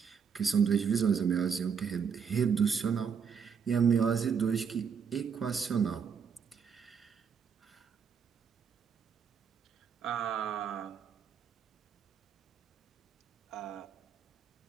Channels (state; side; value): quieter; left; 6.6 dB